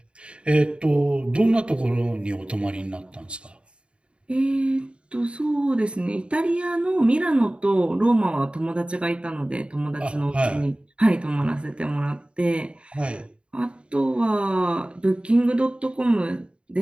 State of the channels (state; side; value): late; left; 0.056 ms